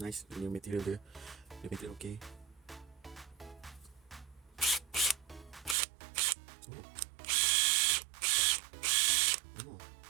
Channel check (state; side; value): drops out; left; at 5.8 s